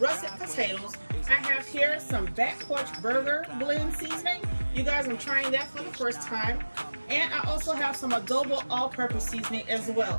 potatoes. I have here some back porch burger blend seasoning. You guys, I'm trying that for the first time. And I also have some adobo all-purpose seasoning as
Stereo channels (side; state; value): both; inverted; correlation -1.00